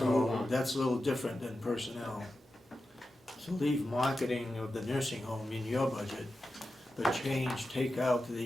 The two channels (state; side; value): normal; both; correlation 0.92